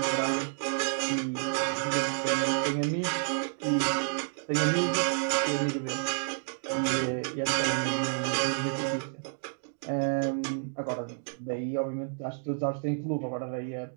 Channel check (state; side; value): silent; left; digital silence